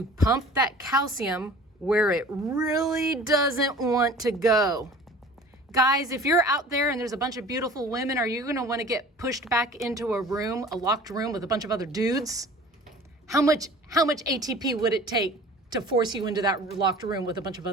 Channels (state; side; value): normal; both; correlation 0.44